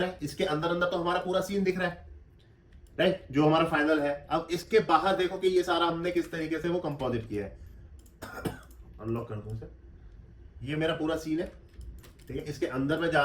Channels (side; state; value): both; identical; correlation 1.00